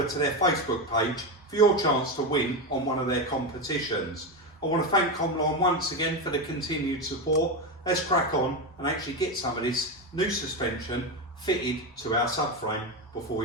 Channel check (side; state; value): both; normal; correlation 0.14